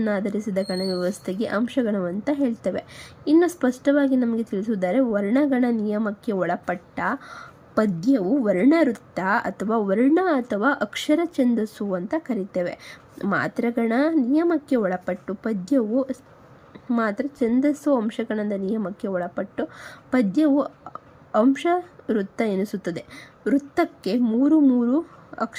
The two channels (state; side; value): identical; both; correlation 1.00